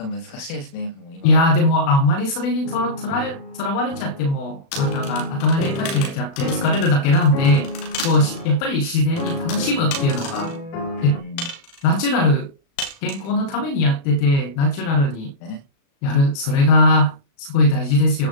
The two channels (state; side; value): late; right; 36 ms